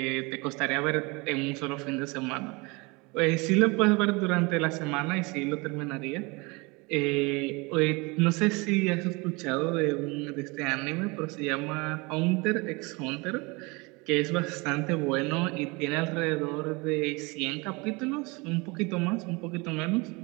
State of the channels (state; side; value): quieter; left; 26.6 dB